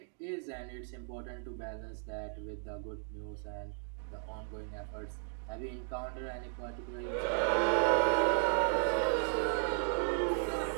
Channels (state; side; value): silent; left; 54 dB below the other